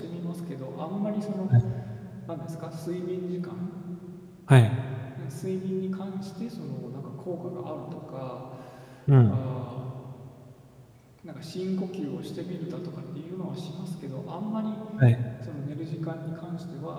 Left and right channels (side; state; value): both; identical; correlation 1.00